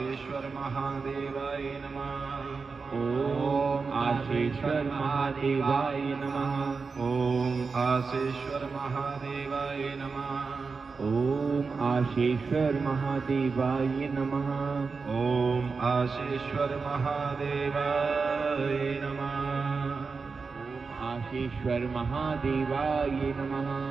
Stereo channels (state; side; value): quieter; left; 4.7 dB